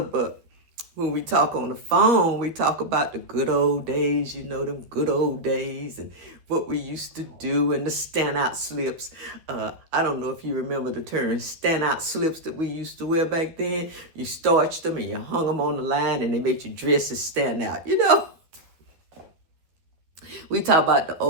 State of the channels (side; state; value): left; late; 12 ms